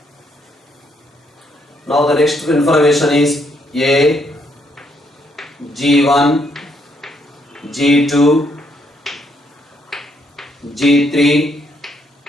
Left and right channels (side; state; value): both; normal; correlation 0.73